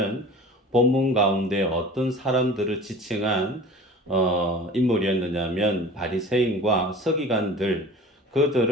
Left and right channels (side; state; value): both; normal; correlation 0.40